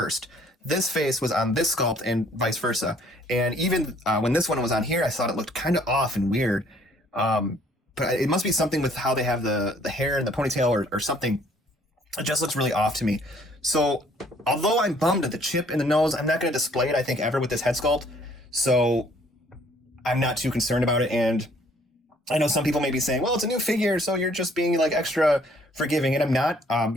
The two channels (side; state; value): both; normal; correlation 0.61